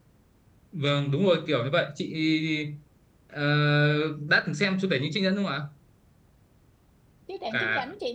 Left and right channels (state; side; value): identical; both; correlation 1.00